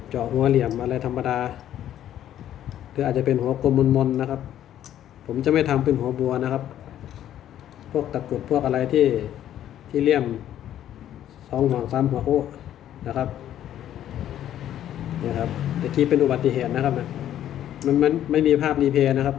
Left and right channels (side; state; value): right; quieter; 11.4 dB